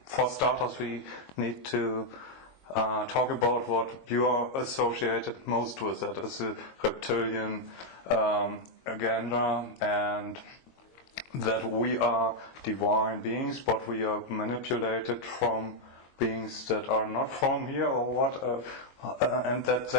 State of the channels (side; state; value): right; late; 22 ms